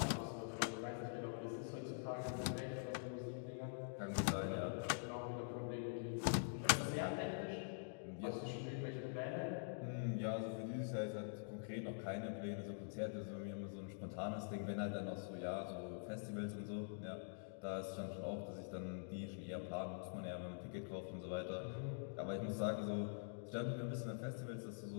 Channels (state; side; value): silent; right; digital silence